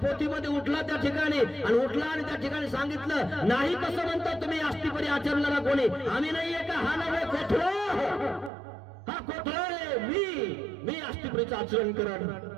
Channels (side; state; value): left; drops out; at 8.5 s